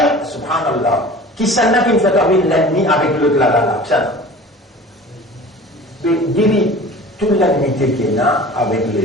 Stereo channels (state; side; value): normal; both; correlation 0.41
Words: subhanallah, qui s'en a qui me fait avec l'ennemi avec l'autre là, ça. Divise toute l'ennemité qu'il y a avec